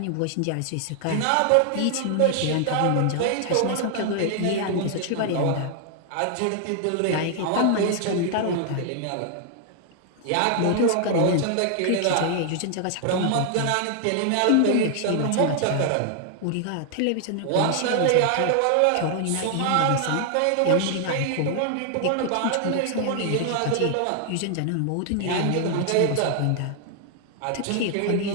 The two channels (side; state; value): both; different; correlation 0.00